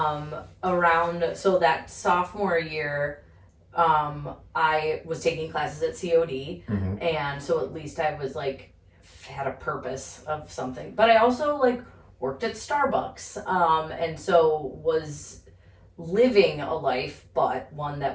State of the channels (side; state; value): both; identical; correlation 1.00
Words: around, so that sophomore year, I was taking classes at COD, and so at least I was, like, had a purpose of something. But I also, like, worked at Starbucks, and so was living a life, but one